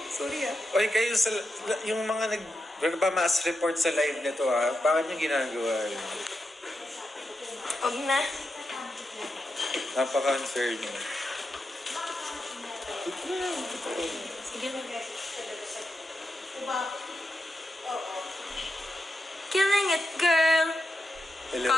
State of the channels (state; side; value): normal; both; correlation 0.87